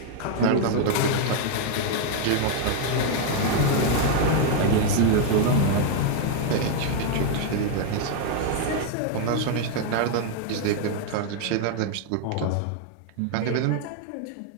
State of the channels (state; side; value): different; both; correlation 0.00